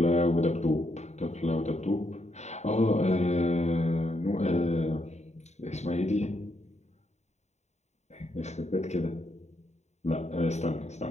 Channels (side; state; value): right; late; 0.32 ms